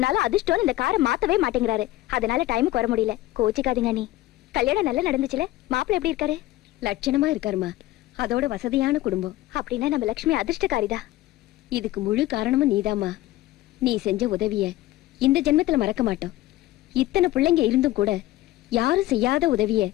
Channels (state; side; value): quieter; right; 16.5 dB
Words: அதிர்ஷ்டம் இந்த காரை மாத்தவே மாட்டேங்கிறாரு. அதனால டைமுக்கு வர முடியல. கோச்சிக்காதீங்க அண்ணி. கல்யாணம் நல்லா நடந்துச்சுல? மாப்பிள்ளை எப்படி இருக்காரு? லட்சணமா இருக்காருமா. அதோட வசதியான குடும்பம். அப்படின்னா நம்ம லட்சுமி அதிர்ஷ்டக்காரிதா. இதுக்கு முழு காரணமும் நீதாம்மா. நீ செஞ்ச உதவிய இந்த ஜென்மத்துல மறக்க மாட்டோம். இத்தனை பிள்ளைங்க இருந்தும் கூட யாரும் செய்யாத உதவிய